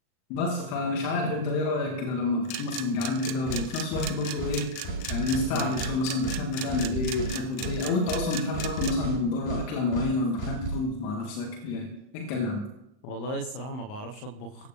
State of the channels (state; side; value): late; right; 39 ms